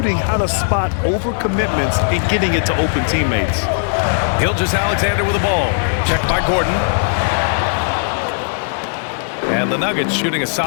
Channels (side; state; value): right; silent; digital silence